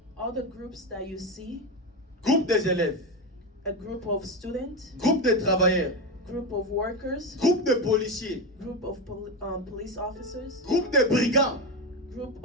All the groups that you see, groupe des élèves, a group of students, groupe de travailleurs, group of workers, groupe de policiers, group of police officers, groupe de brigands, group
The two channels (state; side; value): normal; both; correlation 0.15